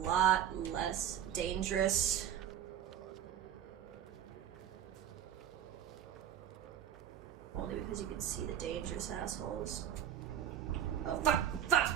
less dangerous. Only because you can see the dangerous assholes. Oh, fuck! Fuck!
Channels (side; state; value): left; quieter; 10.2 dB